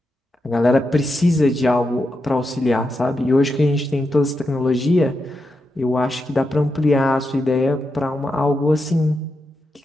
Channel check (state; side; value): normal; both; correlation 0.86